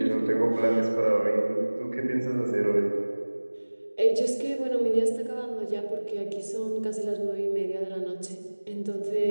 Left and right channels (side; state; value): both; inverted; correlation -1.00